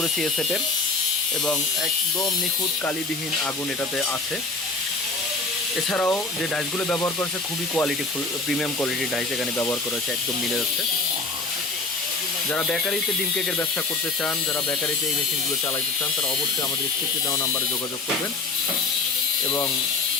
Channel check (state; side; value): quieter; right; 3.7 dB